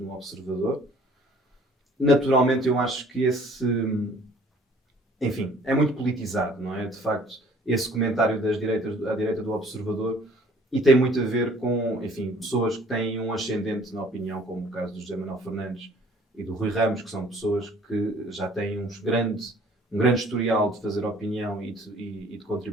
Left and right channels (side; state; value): both; normal; correlation 0.55